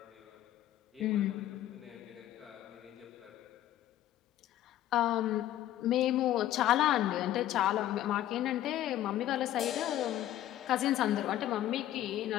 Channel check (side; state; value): right; quieter; 13.0 dB